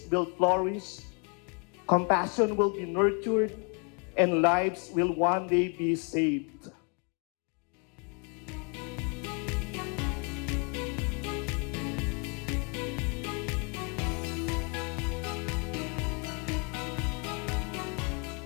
will flourish, compassion will be nurtured, and lives will one day be saved.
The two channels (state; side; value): quieter; right; 35.2 dB